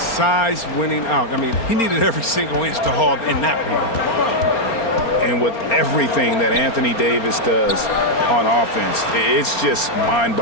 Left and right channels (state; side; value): late; right; 4.3 ms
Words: winning out. I mean, he needed every single inch to haul in that rebound. And with everything that Anthony Davis does on offense, it's just